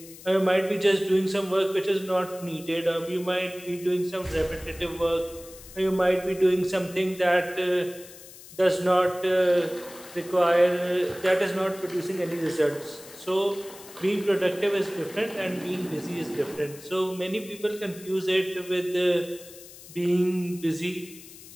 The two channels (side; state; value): left; noise; hiss, 18 dB below the sound